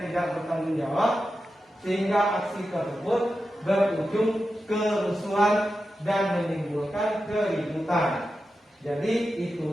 tidak bertanggung jawab, sehingga aksi tersebut berujung kerusuhan dan menimbulkan keributan. Jadi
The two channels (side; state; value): both; normal; correlation 0.91